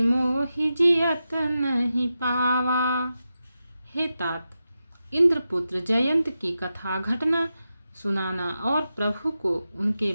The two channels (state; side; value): inverted; both; correlation -0.90